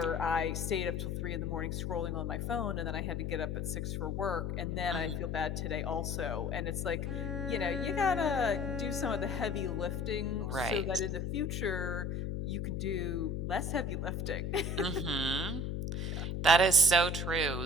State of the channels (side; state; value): left; noise; hum, 2 dB below the sound